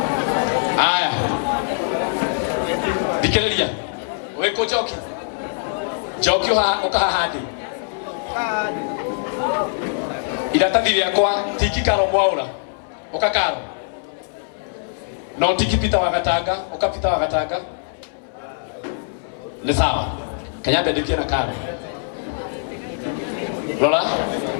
Aya. Dikeleria. Weko joki. Joki ukaha hadi. Iratathi rĩakwa tiki Karo Mwaura. Ukakaro. No tiki Peter Wagatanga, ukapita Wagatanga. Ni sawa. Kenya bendikia na Karo. Lola?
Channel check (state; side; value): silent; right; 60 dB below the other